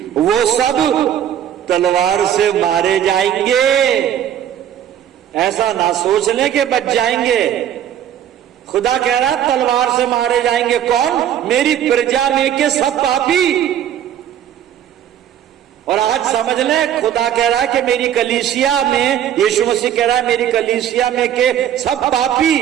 वो सब तलवार से मारे जाएंगे। ऐसा ना सोच लें कि बच जाएंगे। खुदा कह रहा तलवार से मारे जाएंगे। कौन? मेरी प्रजा में के सब पापी। और आज समझ लें खुदा कह रहा है कि मेरी कलीसिया में, यीशु मसीह कह रहा है मेरी कलीसिया में के सब पापी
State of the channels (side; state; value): left; quieter; 10.4 dB